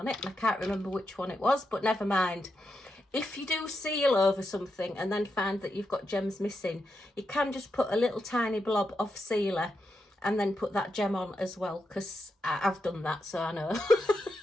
it, and I can't remember which one it was, but never mind. If you do seal over something and then find that you've got gems missing, you can just put a little tiny blob of sealer and then put that gem on as well, because I've done that, so I know.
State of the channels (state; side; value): normal; both; correlation 0.85